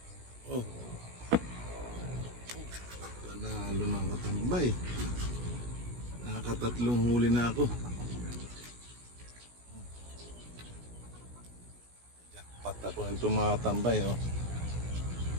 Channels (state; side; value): late; left; 16 ms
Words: Panalo mga katambay. Nakatatlong huli na ako. Jackpot ako nito mga katambay.